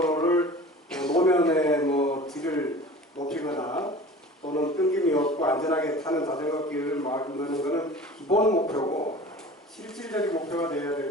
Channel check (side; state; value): both; normal; correlation 0.41